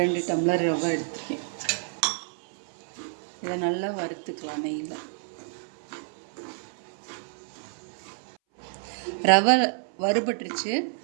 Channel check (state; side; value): silent; left; 59 dB below the other